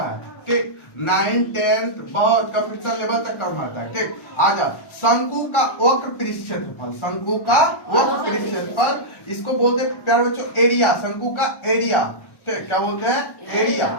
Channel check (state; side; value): late; right; 1.1 ms